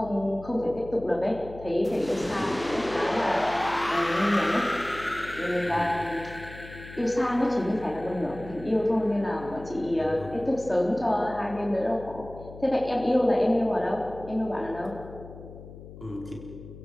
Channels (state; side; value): noise; left; hum, 15 dB below the sound